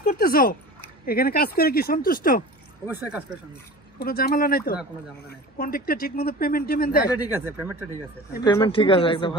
করতেছো এখানে কাজ করে কি সন্তুষ্ট? অবশ্যই কাজ করে সন্তুষ্ট। কোনো ঝামেলা নাই তো? না, কোনো ঝামেলা নাই। কন্ট্রাক্টর ঠিকমতো পেমেন্ট দেয়? এটা ঠিক আছে, পেমেন্টটা ঠিক আছে। পেমেন্ট ঠিক আছে, একদম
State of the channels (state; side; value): normal; both; correlation 0.37